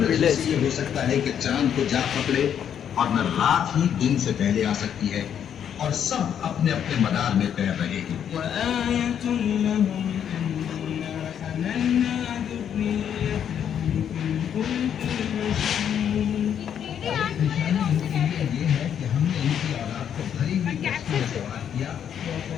Village. ये हो सकता है कि चांद को जा पकड़े और न रात ही दिन से पहले आ सकती है और सब अपने अपने मदार में तैर रहे हैं। ये है कि हमने इनकी औलाद को भरी हुई कश्ती में सवार किया।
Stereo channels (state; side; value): quieter; right; 8.9 dB